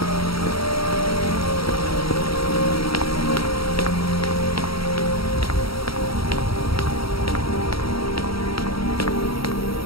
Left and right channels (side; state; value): right; late; 0.75 ms